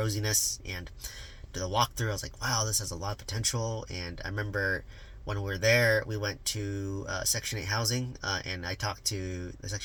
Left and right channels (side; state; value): both; identical; correlation 1.00